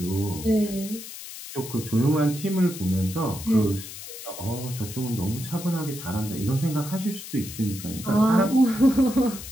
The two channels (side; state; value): left; noise; hiss, 12 dB below the sound